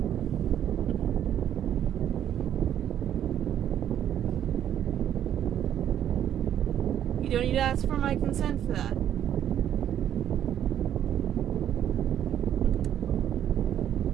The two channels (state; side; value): quieter; left; 10.4 dB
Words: You don't need to ask for my consent for that.